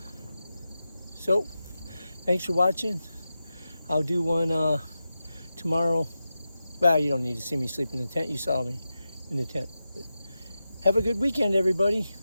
So, thanks for watching. I'll do one tomorrow. Well, you don't need to see me sleep in the tent. You saw me in the tent. But have a good weekend, everybody.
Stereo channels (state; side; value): inverted; both; correlation -0.92